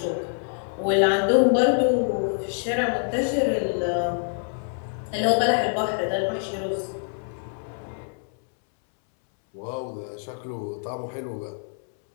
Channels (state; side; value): silent; right; 61 dB below the other